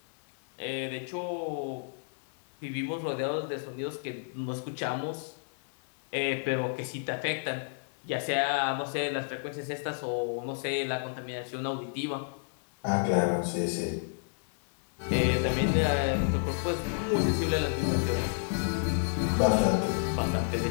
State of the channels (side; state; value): right; silent; 57 dB below the other